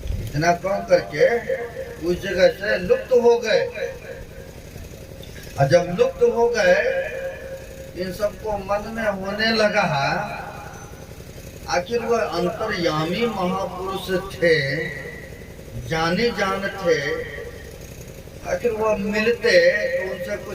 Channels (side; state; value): both; identical; correlation 1.00